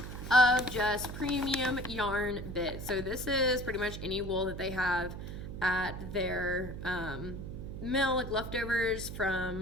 of just premium yarn bit. So this is pretty much any wool that they have at their mill, like leftovers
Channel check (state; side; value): noise; right; hum, 8 dB below the sound